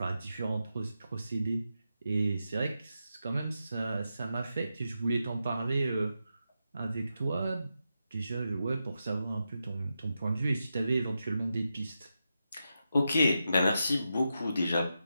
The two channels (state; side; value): inverted; both; correlation -0.87